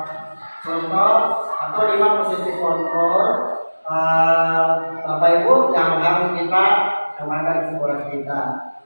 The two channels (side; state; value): both; inverted; correlation -1.00